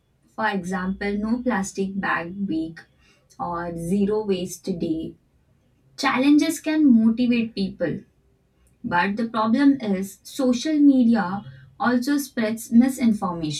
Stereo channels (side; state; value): both; identical; correlation 1.00